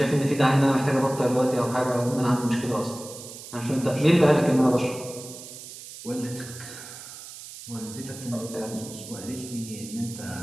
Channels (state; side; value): noise; right; hiss, 14 dB below the sound